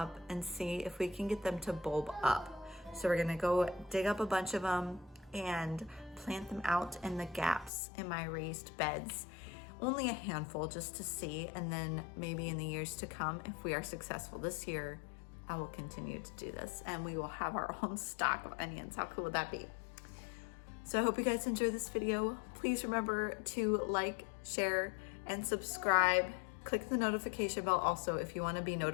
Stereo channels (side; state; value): right; drops out; at 7.7 s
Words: and see if we can get them to bulb up. So we're gonna go dig up a bunch of them and plant them out in the gaps in my raised beds. Only a handful just to see, and then maybe in the years to come, if we are successful this year, I will continue to do this and we will have our own stock of onions. How cool would that be? So I hope you guys enjoy this video. Please remember to like, share, and subscribe. Click the notification bell also if you want to be